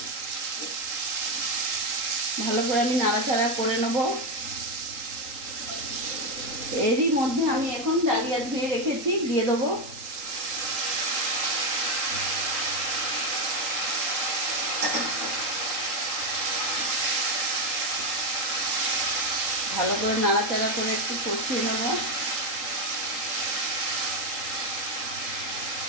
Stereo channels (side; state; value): left; late; 3.8 ms